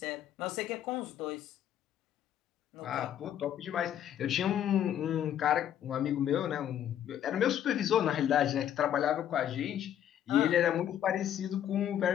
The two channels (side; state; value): right; quieter; 10.5 dB